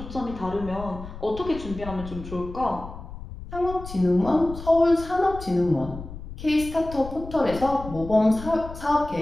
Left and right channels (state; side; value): noise; left; rumble, 12 dB below the sound